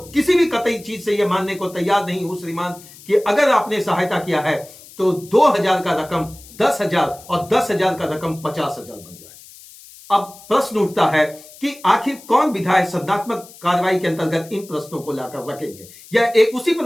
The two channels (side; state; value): left; noise; hiss, 20 dB below the sound